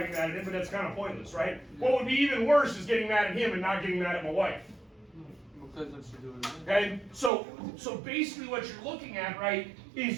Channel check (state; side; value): drops out; left; at 7.3 s